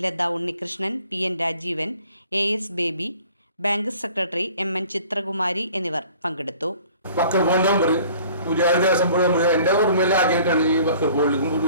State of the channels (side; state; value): both; inverted; correlation -0.52